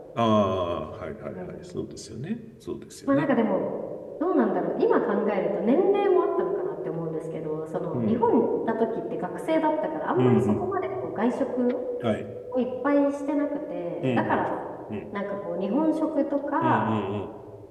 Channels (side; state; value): both; identical; correlation 1.00